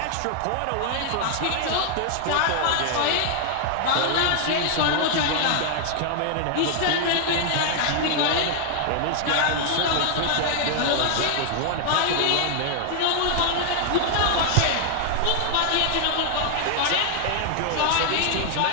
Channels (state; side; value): different; both; correlation 0.00